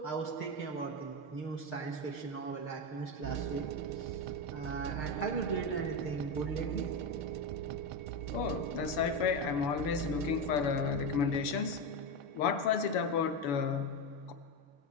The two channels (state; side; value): late; right; 6.9 ms